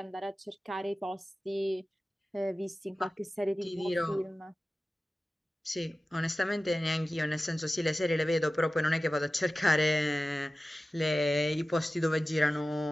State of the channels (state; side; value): normal; both; correlation 0.96